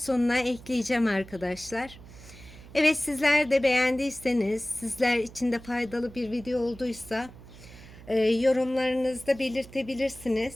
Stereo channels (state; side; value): noise; right; hum, 18 dB below the sound